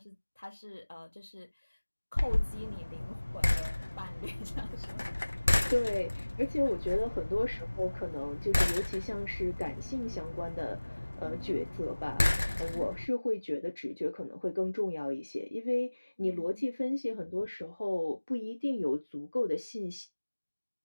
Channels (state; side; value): inverted; both; correlation -1.00